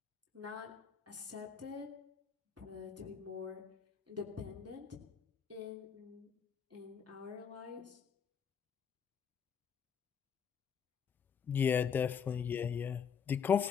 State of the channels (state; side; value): quieter; right; 7.2 dB